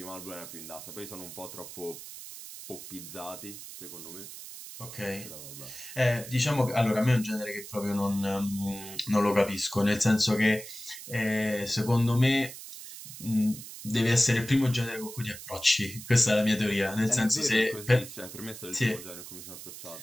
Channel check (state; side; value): noise; right; hiss, 13 dB below the sound